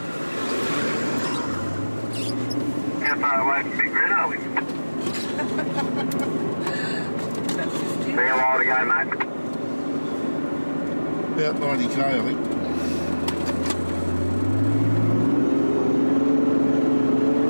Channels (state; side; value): inverted; both; correlation -1.00